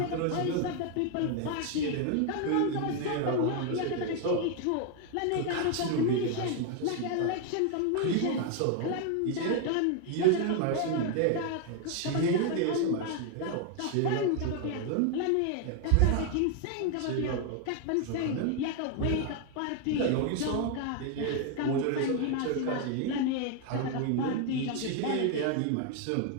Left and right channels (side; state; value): both; different; correlation 0.01